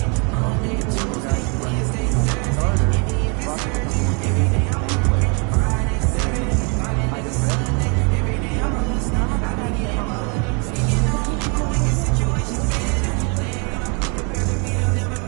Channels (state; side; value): quieter; left; 34.7 dB